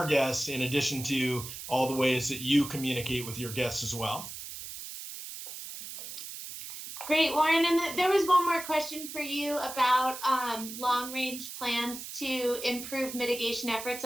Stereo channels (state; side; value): noise; right; hiss, 10 dB below the sound